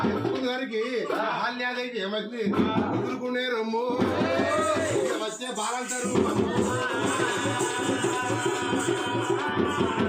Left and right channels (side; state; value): both; identical; correlation 1.00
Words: ఎత్తుకున్న దానికి బాల్యాదైతే ఏమైంది ఎదుర్కొనే రమ్ము వచ్చే బాలంటారు.